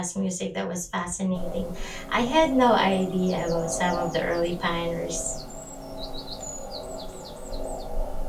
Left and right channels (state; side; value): identical; both; correlation 1.00